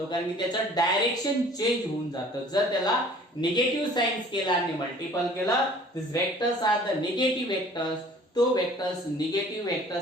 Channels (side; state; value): both; normal; correlation 0.51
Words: कारण की त्याचं डायरेक्शन चेंज होऊन जातं. जर त्याला निगेटिव्ह साइन स्केलरने मल्टिपल केलं this vectors are the negative vectors. तो वेक्टर्स निगेटिव्ह